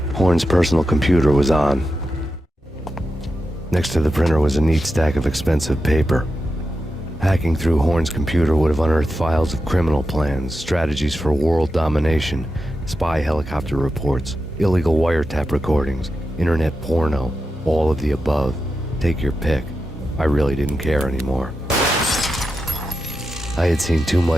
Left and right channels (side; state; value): both; normal; correlation 0.89